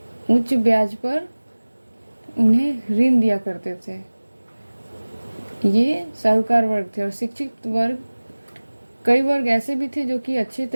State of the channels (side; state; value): both; inverted; correlation -1.00